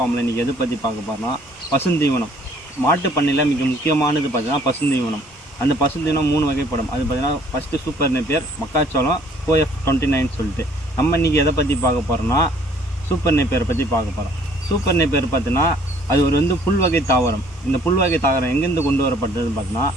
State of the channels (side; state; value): both; normal; correlation 0.59